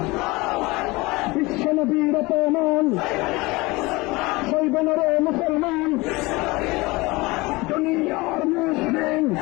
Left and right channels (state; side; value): quieter; right; 22.9 dB